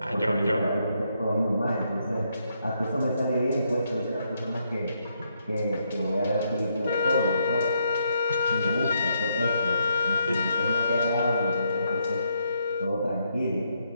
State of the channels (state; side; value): inverted; both; correlation -0.77